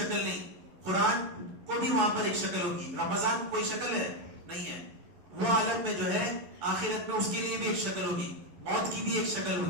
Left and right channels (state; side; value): late; left; 11 ms